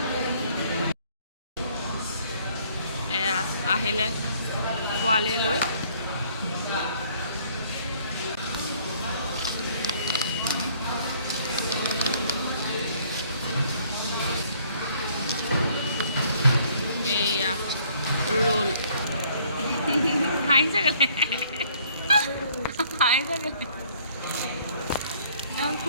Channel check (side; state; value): both; inverted; correlation -0.61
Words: এয়া আহিলে পোৱালীয়ে লৈ। এয়া ৰোল হাঁহিছে গ'লে, হাঁহিছে গ'লে